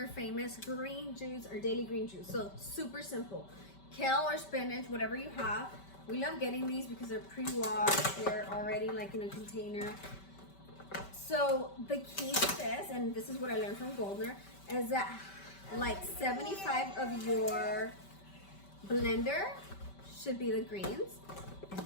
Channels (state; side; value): late; right; 5.2 ms